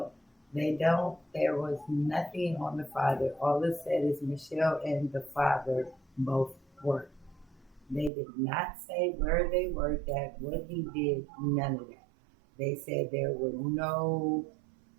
they don't. There was nothing on the father. All it said is Michelle and the father both worked. They did not say where they worked at, what he did, none of that. They said there were no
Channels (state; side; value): drops out; left; at 8.1 s